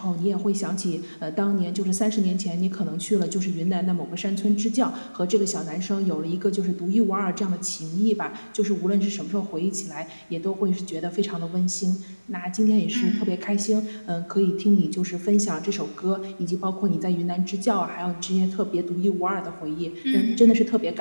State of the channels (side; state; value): both; inverted; correlation -1.00